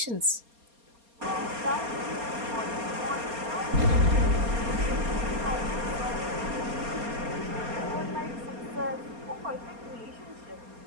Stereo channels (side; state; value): left; late; 4.3 ms